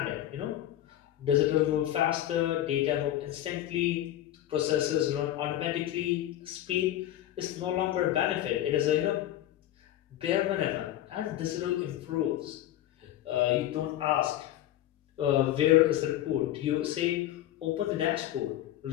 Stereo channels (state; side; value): quieter; right; 13.0 dB